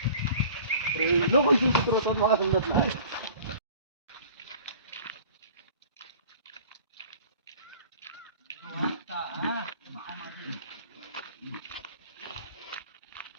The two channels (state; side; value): inverted; both; correlation -0.46